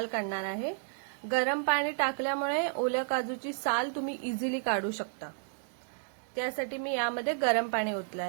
काढणार आहे। गरम पाणी टाकल्यामुळे ओल्या काजूची साल तुम्ही इझिली काढू शकता। त्यासाठी मी यामध्ये गरम पाणी ओतले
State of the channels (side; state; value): left; silent; digital silence